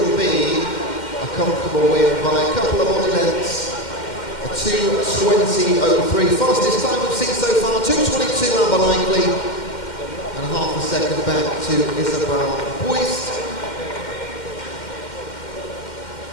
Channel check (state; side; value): late; right; 2.1 ms